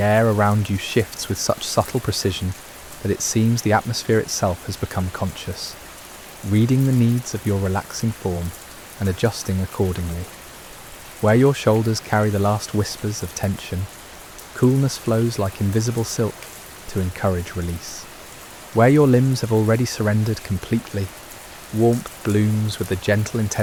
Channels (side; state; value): both; identical; correlation 1.00